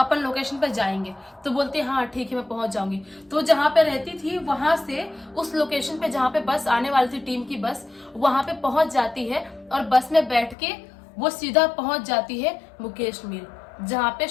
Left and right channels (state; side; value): drops out; right; at 10.6 s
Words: लोकेशन पर जाएंगे। तो बोलती है हाँ ठीक है मैं पहुंच जाऊंगी। तो जहां पे रहती थी वहां से उस लोकेशन पे जहां पे बस आने वाली थी, टीम की बस, वहां पे पहुंच जाती है और बस में बैठ के वो सीधा पहुंच जाती है मुकेश मिल, जहाँ पे